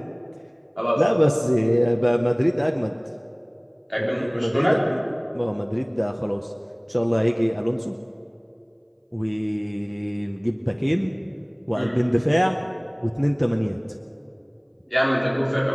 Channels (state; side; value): identical; both; correlation 1.00